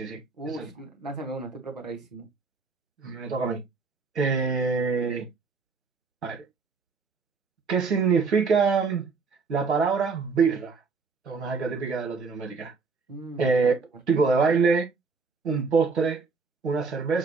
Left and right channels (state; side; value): quieter; left; 4.7 dB